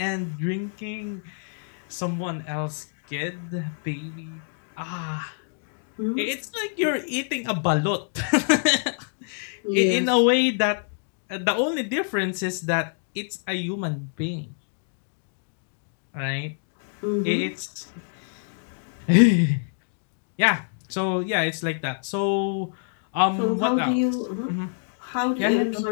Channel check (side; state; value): right; silent; digital silence